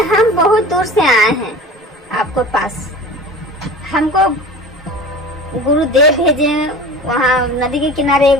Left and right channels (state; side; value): normal; both; correlation 0.37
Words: हम बहुत दूर से आए हैं आपको पास, हमको गुरुदेव भेजे हैं, वहाँ नदी के किनारे